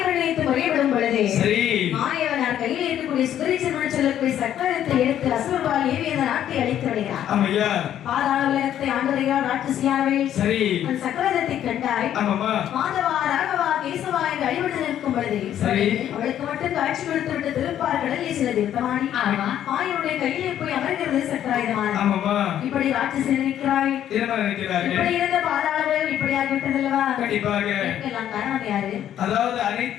முறையிடும் பொழுது மாயவனார் கையில் இருக்கக்கூடிய சுதரிசன் சொல்லக்கூடிய சக்கரத்தை எடுத்து அசுரபால் ஏவி அந்த நாட்டை அழித்து விடுகிறார். பாதாள உலகத்தை ஆண்டவரையால் ராட்சசியானவள் அந்த சக்கரத்தை கண்டாய். மாதவா ராகவா கேசவா என்று அழிவிட்டு நிற்கும் பொழுது அவளுக்கு மட்டும் காட்சி கொடுத்து விட்டு திருப்பார் கடலில் சில தீர்த்தமானி மாயனுடைய கையிலே போய் அமர்கிறது சக்கராயுதமான. இப்படி ராட்சசி நினைக்கிறாய். இப்படி இருந்த பாதாள உலகம் இப்படி ஆகிவிட்டதல்லவா? எல்லாம் காரணம் யாரு? அதாவது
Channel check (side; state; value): right; quieter; 10.8 dB